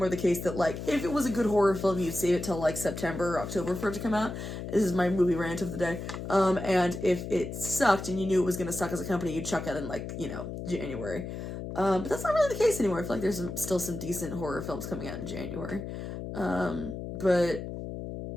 the case that, like, if it was a good horror film, you'd save it till, like, September or October for it to come out. This is my movie rant of the day. And if it sucked and you knew it was going to suck as a company, you'd chuck it in, like, you know, January. But that's not really the case anymore. I feel like there's still some decent horror films coming out in January. But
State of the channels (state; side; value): noise; left; hum, 7 dB below the sound